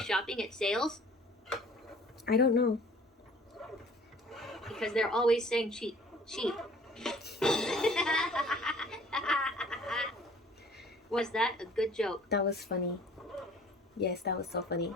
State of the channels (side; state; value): both; normal; correlation 0.51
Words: at sales? I don't know. Because they're always saying cheap, cheap. Was that a good joke? That was funny. Yes, that was so funny.